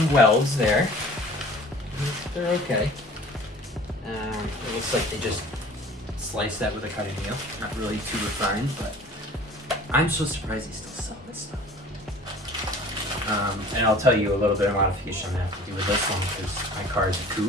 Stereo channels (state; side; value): normal; both; correlation 0.46